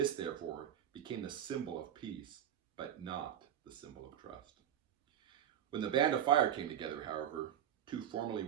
therefore, became the symbol of peace, but not the symbol of trust. When the Band of Fire came together, however, 2 formerly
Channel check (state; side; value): quieter; left; 10.2 dB